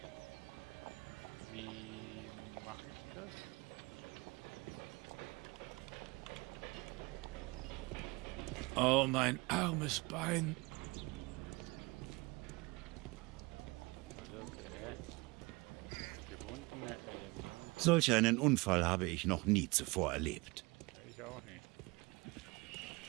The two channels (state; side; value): quieter; left; 24.8 dB